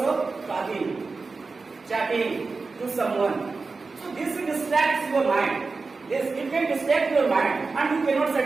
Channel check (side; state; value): left; quieter; 4.1 dB